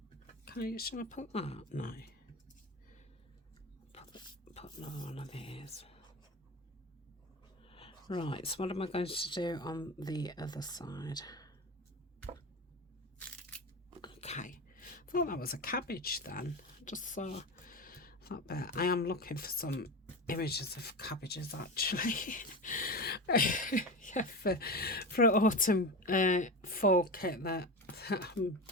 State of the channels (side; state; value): both; normal; correlation 0.24